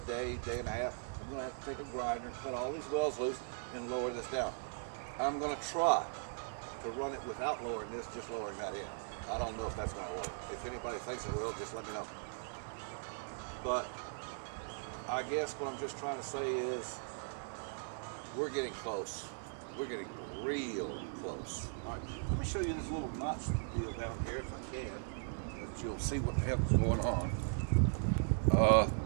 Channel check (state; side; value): silent; left; digital silence